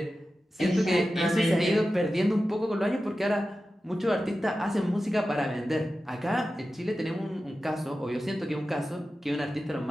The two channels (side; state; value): both; normal; correlation 0.93